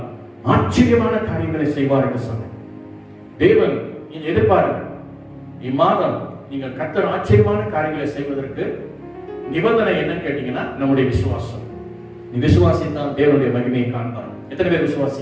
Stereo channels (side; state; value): both; identical; correlation 1.00